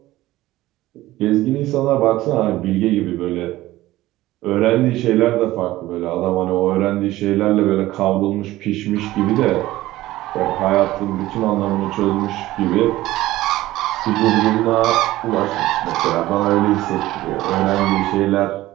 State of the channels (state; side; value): quieter; left; 16.5 dB